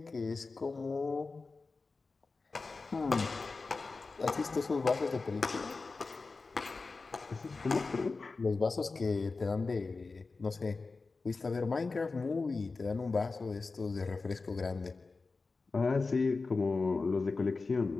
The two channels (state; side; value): quieter; right; 4.0 dB